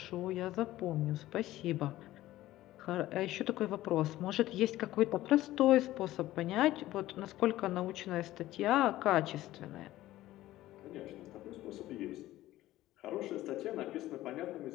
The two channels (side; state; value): right; quieter; 15.5 dB